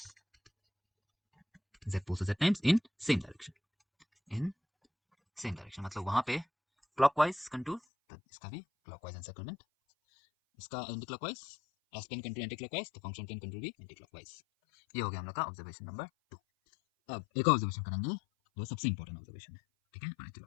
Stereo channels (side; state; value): right; drops out; at 7.8 s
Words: z poles z times in same direction, in same direction मतलब वहां पे क्लॉकवाइज कंटूर, तो इसका भी क्लॉकवाइज एनसर्कलमेंट, इसका anti clockwise, s plane contour anti clockwise, तो फंक्शन प्लेन कंटूर भी एंटी क्लॉकवाइज। ये हो गया हम लोग का ऑब्जर्वेशन नंबर 2। अब एक और ऑब्जर्वेशन करेंगे जो सबसे इंपॉर्टेंट ऑब्जर्वेशन है। ठीक है, चलो